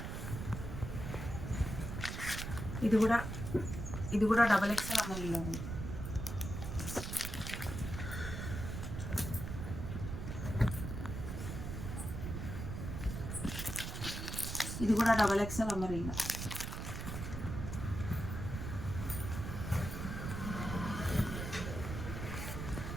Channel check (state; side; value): noise; right; rumble, 5 dB below the sound